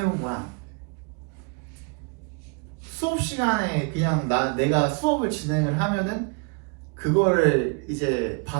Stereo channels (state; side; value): quieter; left; 34.6 dB